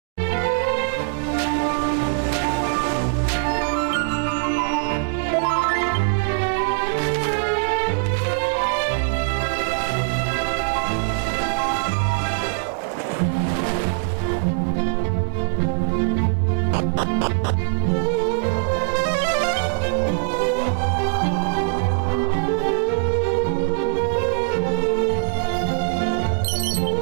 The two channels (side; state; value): left; silent; digital silence